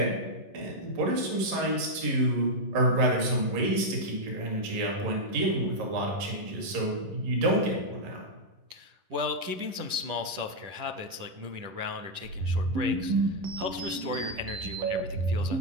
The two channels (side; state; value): left; late; 11 ms